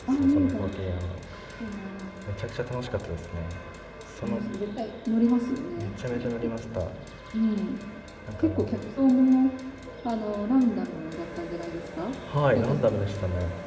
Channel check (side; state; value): both; identical; correlation 1.00